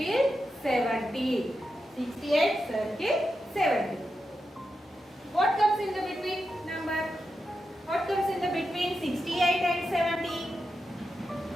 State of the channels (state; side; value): normal; both; correlation 0.88